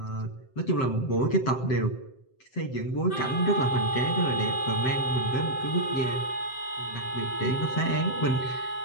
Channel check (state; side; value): late; right; 7.7 ms